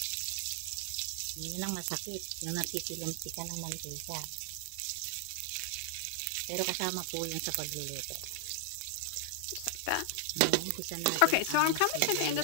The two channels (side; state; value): both; different; correlation 0.00